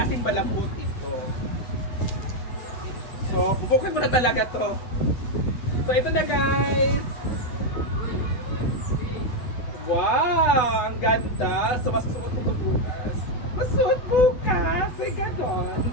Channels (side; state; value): right; late; 8.6 ms